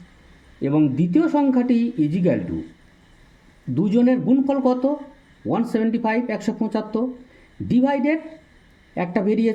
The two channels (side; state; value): both; identical; correlation 1.00